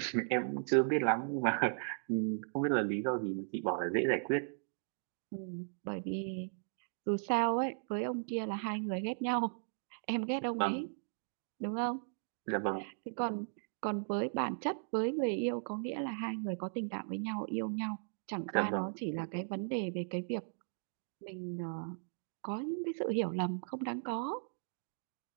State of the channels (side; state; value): left; silent; digital silence